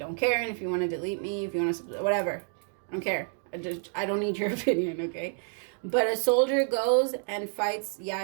care. And if you want to delete me, if you want to, whatever, I don't care. I don't need your opinion, okay? But a soldier goes and fights.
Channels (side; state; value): left; silent; 58 dB below the other